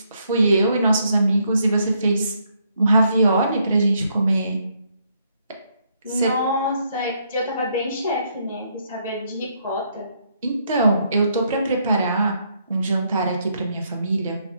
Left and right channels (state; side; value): inverted; both; correlation -0.73